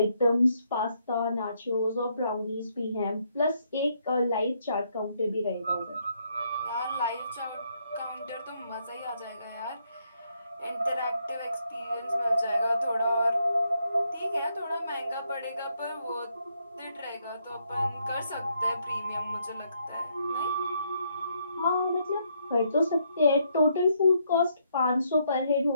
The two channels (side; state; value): both; inverted; correlation -0.74